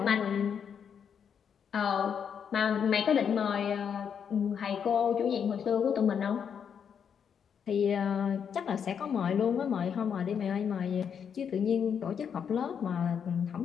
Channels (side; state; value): right; quieter; 7.5 dB